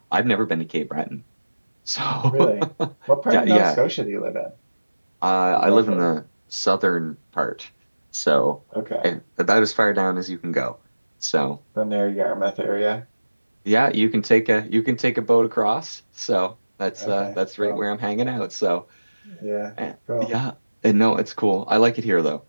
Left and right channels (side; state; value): both; inverted; correlation -1.00